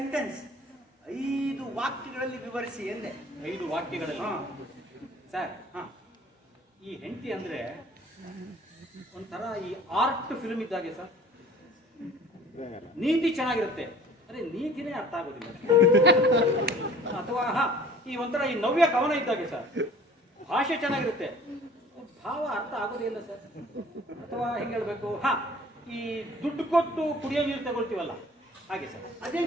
5 ವಾಕ್ಯಗಳಲ್ಲಿ ವಿವರಿಸಿ ಎಂದೆ. 5 ವಾಕ್ಯಗಳಲ್ಲಿ ಹಾ. ಸರ್ ಈ ಹೆಂಡತಿ ಅಂದ್ರೆ ಒಂಥರ ಈ ಆರ್ಟ್ ಫಿಲ್ಮ್ ಇದ್ದಾಗೆ ಸರ್. ನೀತಿ ಚೆನ್ನಾಗಿರುತ್ತೆ, ಅರೆ ನೀತಿನೇ ಅರ್ಥ ಆಗೋದಿಲ್ಲ. ಅಥವಾ ಈ ಒಂಥರ ಈ ನವ್ಯ ಕವನ ಇದ್ದಾಗೆ ಸರ್. ಭಾಷೆ ಚೆನ್ನಾಗಿರುತ್ತೆ, ಭಾವ ಅರ್ಥ ಆಗೋದೇ ಇಲ್ಲ ಸರ್. ಅಥವಾ ಹೆಂಗೆ ಹೇಳ್ಬೇಕು, ಈ ದುಡ್ಡು ಕೊಟ್ಟು ಕುಡಿಯೋ ನೀರು ತಗೊಳ್ತೀವಲ್ಲ ಹಾಗೆ ಸರ್.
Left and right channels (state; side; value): normal; both; correlation 0.49